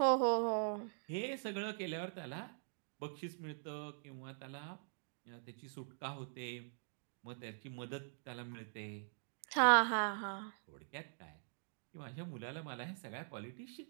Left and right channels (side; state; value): left; silent; digital silence